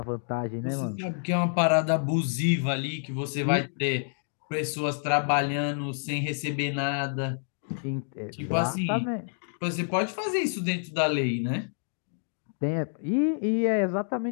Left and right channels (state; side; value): silent; right; digital silence